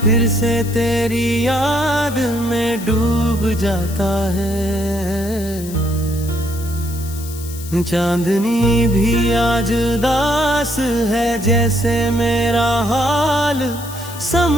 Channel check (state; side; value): noise; left; hiss, 14 dB below the sound